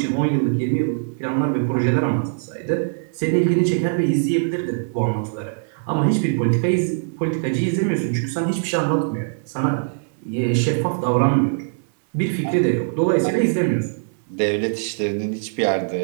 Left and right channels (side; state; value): left; silent; digital silence